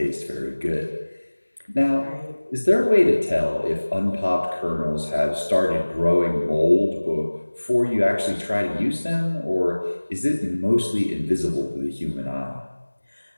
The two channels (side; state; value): both; inverted; correlation -1.00